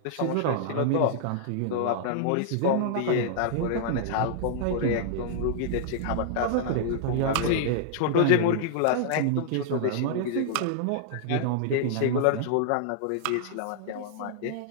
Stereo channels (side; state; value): both; different; correlation -0.01